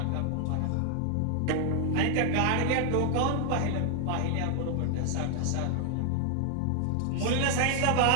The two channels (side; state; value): both; different; correlation 0.00